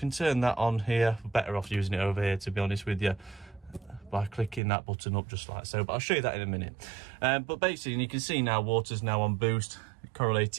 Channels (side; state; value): left; drops out; at 4.6 s